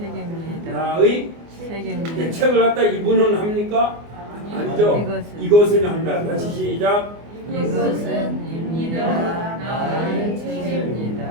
나의 책임입니다. 책을 갖다 이분은 합니까? 아니죠. 이것은 합니다. 다시 시작. 이것은 입니다. 나의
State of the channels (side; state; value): left; late; 24 ms